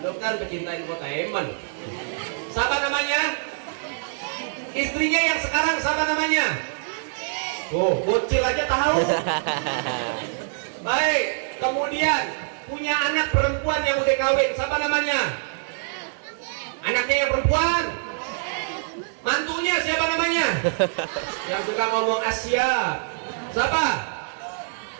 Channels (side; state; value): left; silent; digital silence